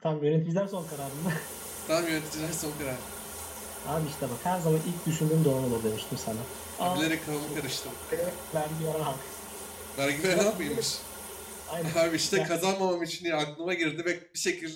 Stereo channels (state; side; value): identical; both; correlation 1.00